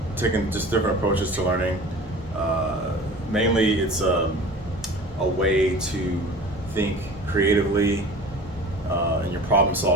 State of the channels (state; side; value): normal; both; correlation 0.40